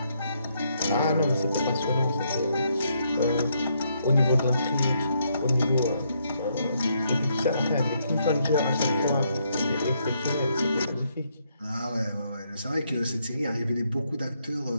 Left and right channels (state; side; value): inverted; both; correlation -0.75